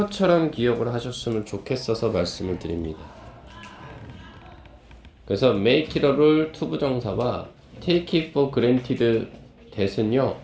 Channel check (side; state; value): both; identical; correlation 1.00